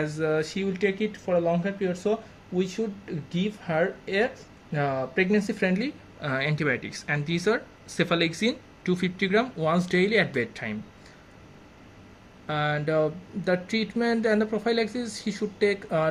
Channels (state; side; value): identical; both; correlation 1.00